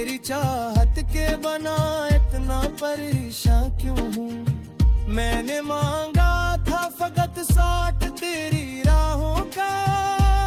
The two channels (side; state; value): both; identical; correlation 1.00